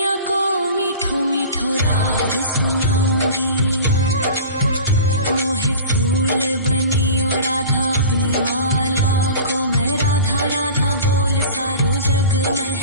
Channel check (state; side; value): inverted; both; correlation -0.38